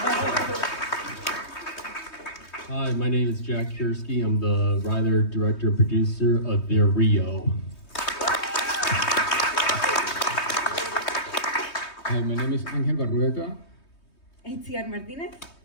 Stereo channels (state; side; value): late; right; 3.2 ms